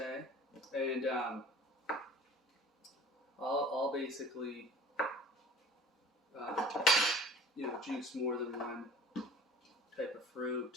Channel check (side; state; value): both; normal; correlation 0.45